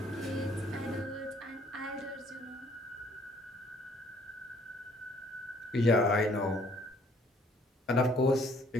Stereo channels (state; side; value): normal; both; correlation 0.61